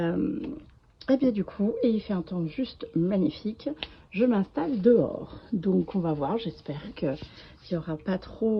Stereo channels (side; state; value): both; identical; correlation 1.00